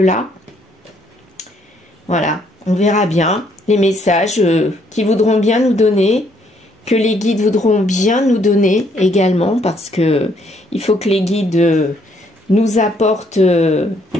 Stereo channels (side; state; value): both; normal; correlation 0.68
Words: voilà, on verra bien les messages qui voudront bien nous donner, que les guides voudront bien nous donner également, parce que il faut que les guides nous apportent